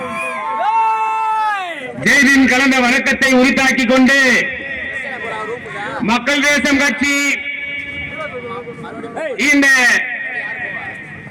ஜெய்பின் கலந்த வணக்கத்தை உரித்தாக்கிக் கொண்டு, மக்கள் தேசம் கட்சி இந்த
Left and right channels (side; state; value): both; identical; correlation 1.00